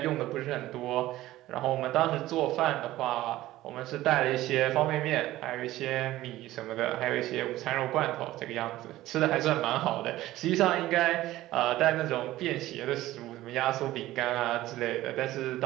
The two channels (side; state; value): left; quieter; 15.9 dB